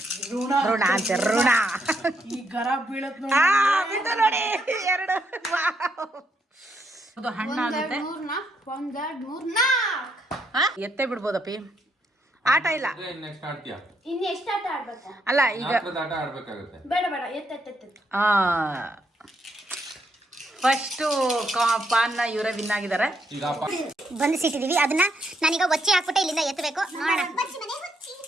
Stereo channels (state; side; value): normal; both; correlation 0.76